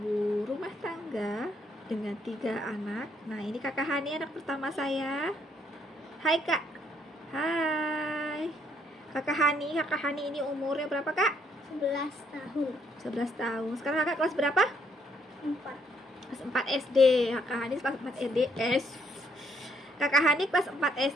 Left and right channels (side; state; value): both; normal; correlation 0.70